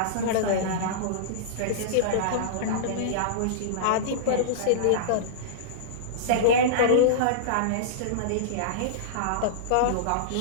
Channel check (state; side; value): different; both; correlation -0.03